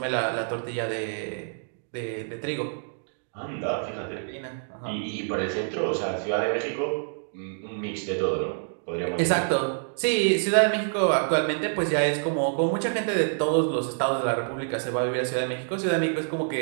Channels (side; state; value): left; silent; digital silence